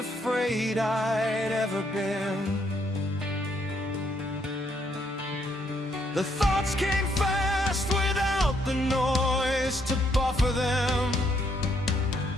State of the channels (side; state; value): both; normal; correlation 0.72